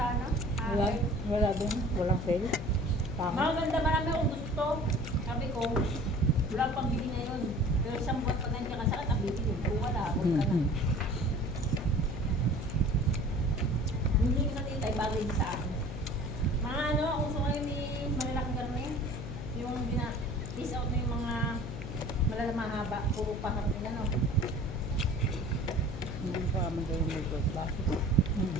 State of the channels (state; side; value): noise; left; hum, 8 dB below the sound